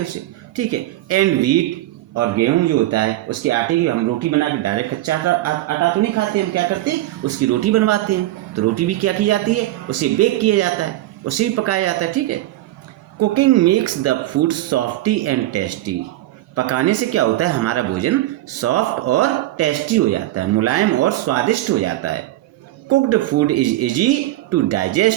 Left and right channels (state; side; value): quieter; left; 15.9 dB